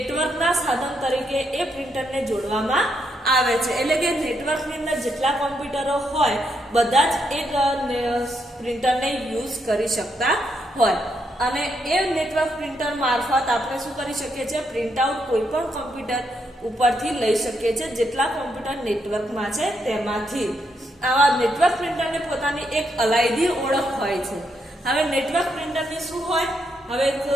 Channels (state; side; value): normal; both; correlation 0.78